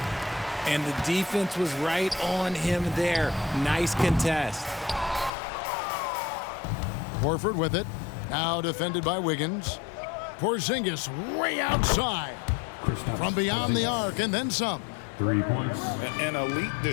And the defense was right on him there. Nice contest. Horford with it. Now defended by Wiggins. Porzingis way outside. From beyond the arc and then some. 3 points. An elite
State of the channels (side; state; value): right; drops out; at 5.3 s